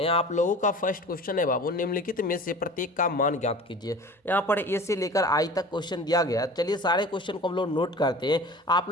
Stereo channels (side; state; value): both; normal; correlation 0.40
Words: आप लोगों का फर्स्ट क्वेश्चन है बाबू, निम्नलिखित में से प्रत्येक का मान ज्ञात कीजिए। यहाँ पर ए से लेकर आई तक क्वेश्चन दिया गया। चलिए सारे क्वेश्चन को हम लोग नोट करते हैं। आप